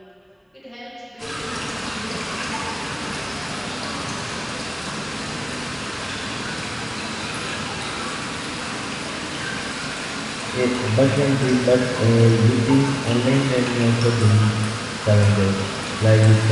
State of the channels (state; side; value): identical; both; correlation 1.00